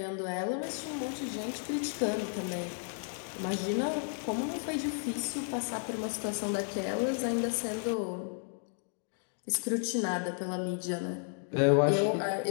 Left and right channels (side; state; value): right; silent; 56 dB below the other